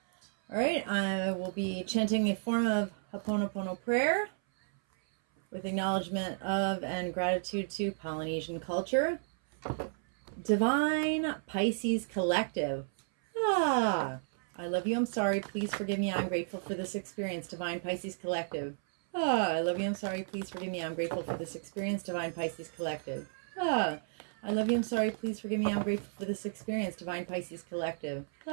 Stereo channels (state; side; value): silent; left; 56 dB below the other